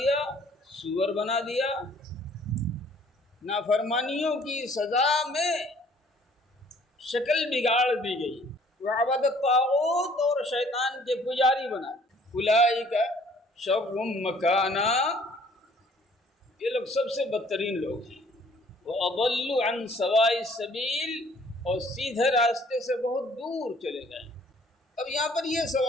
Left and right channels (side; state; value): both; normal; correlation 0.58